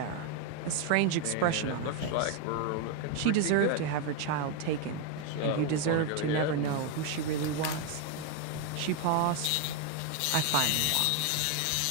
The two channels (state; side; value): different; both; correlation 0.01